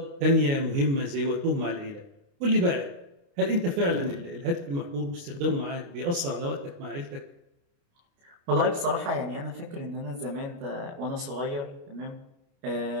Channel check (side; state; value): left; late; 29 ms